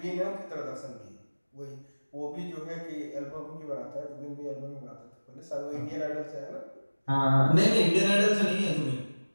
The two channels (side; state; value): both; inverted; correlation -1.00